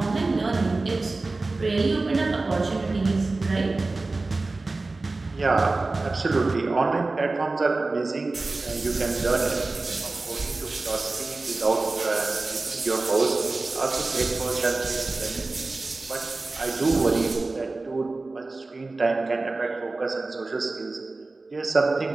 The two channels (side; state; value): left; quieter; 3.4 dB